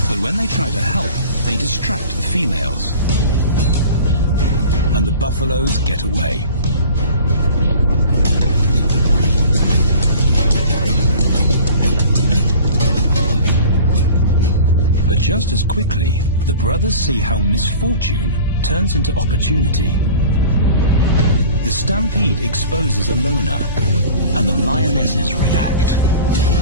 But when they try to help, they distract the females, and the buffaloes get away. But just as quickly, the brothers see how misfortune turns into opportunity. The stampede exposes a loner, and the lionesses react.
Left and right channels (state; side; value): inverted; both; correlation -0.42